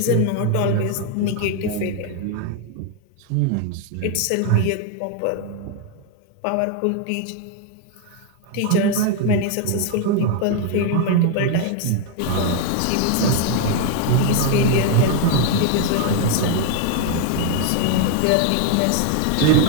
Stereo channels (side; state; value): both; different; correlation 0.01